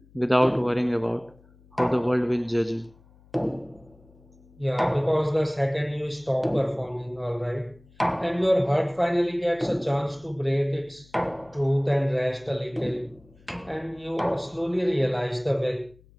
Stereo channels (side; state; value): left; noise; hum, 27 dB below the sound